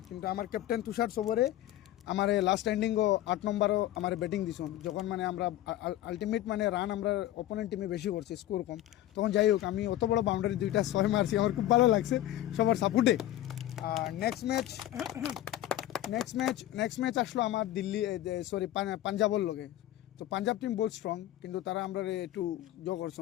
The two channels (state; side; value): quieter; right; 13.7 dB